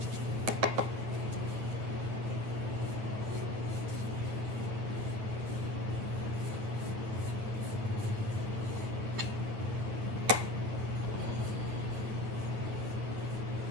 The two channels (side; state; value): left; late; 9.0 ms